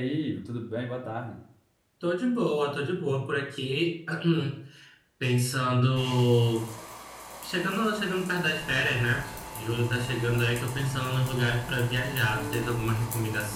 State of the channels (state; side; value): identical; both; correlation 1.00